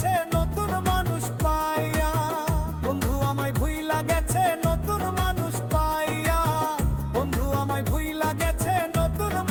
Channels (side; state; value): both; identical; correlation 1.00